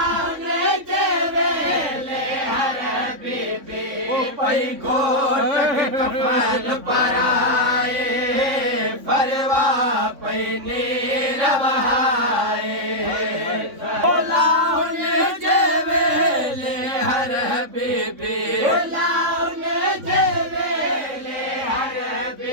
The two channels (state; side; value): late; left; 3.5 ms